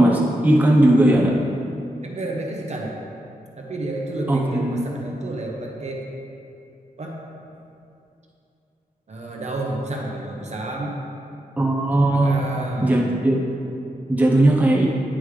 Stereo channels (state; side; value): normal; both; correlation 0.87